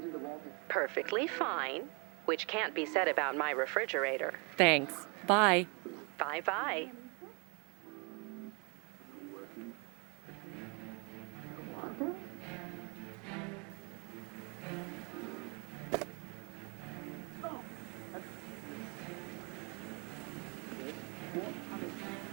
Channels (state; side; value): quieter; left; 32.9 dB